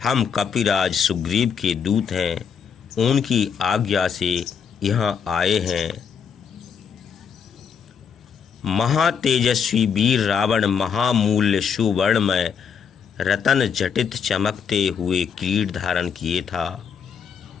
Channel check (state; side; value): quieter; right; 6.8 dB